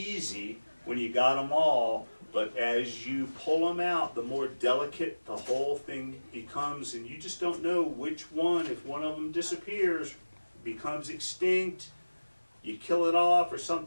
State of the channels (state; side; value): inverted; both; correlation -1.00